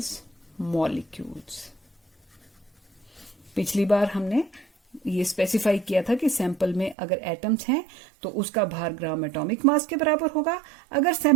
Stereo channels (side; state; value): left; drops out; at 7.0 s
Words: मॉलिक्यूल्स। पिछली बार हमने ये स्पेसिफाई किया था कि सैंपल में अगर एटम्स हैं तो उसका भार ग्राम एटॉमिक मास के बराबर होगा, अगर